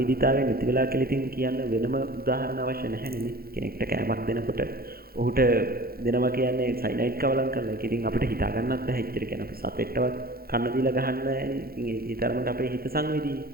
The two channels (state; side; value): late; left; 0.44 ms